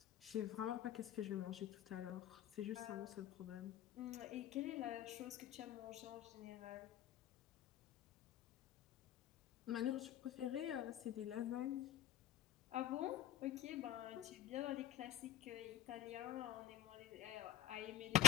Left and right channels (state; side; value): quieter; right; 12.2 dB